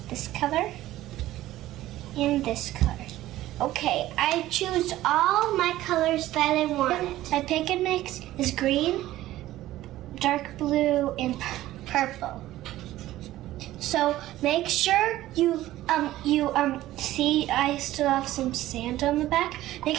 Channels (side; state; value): left; quieter; 15.1 dB